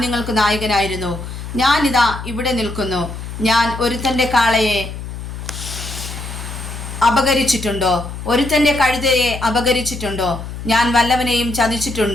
നിങ്ങൾക്ക് നായകനായിരുന്നു. ഞാനിതാ ഇവിടെ നിൽക്കുന്നു. ഞാൻ ഒരുത്തൻ്റെ കാളയെ അപകരിച്ചിട്ടുണ്ടോ? ഒരുത്തൻ്റെ കഴുതയെ അപകരിച്ചിട്ടുണ്ടോ? ഞാൻ വല്ലവനെയും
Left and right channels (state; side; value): noise; left; hum, 9 dB below the sound